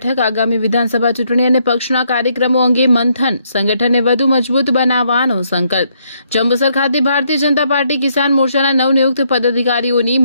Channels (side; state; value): both; inverted; correlation -0.73